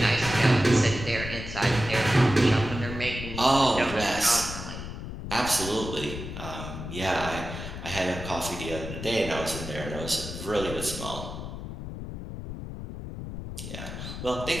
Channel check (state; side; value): noise; left; rumble, 8 dB below the sound